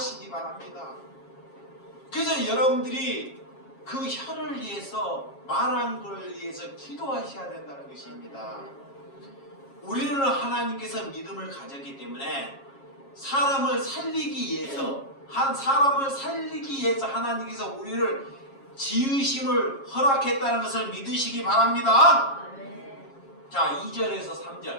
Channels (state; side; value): late; right; 7.3 ms